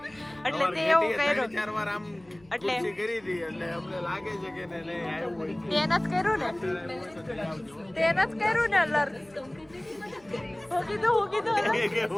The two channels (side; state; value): left; noise; hum, 28 dB below the sound